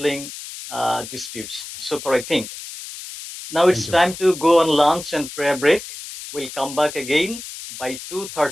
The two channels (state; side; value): noise; left; hiss, 12 dB below the sound